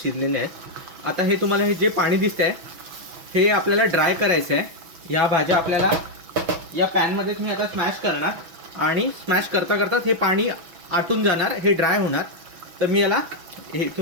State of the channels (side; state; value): left; late; 6.0 ms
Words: आहेत. आता हे तुम्हाला हे जे पाणी दिसतंय हे आपल्याला ड्राय करायचं आहे. ह्या भाज्या आपल्याला या पॅनमध्येच मी आता स्मॅश करणार आणि स्मॅश करता करता हे पाणी आटून जाणार, हे ड्राय होणार. तर मी याला हे